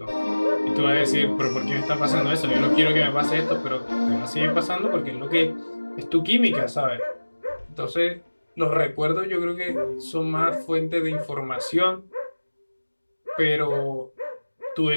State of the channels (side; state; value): both; inverted; correlation -1.00